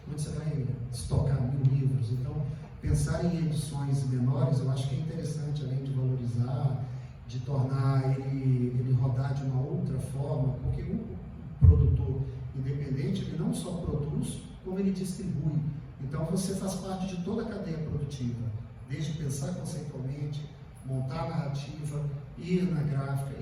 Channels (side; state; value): both; identical; correlation 1.00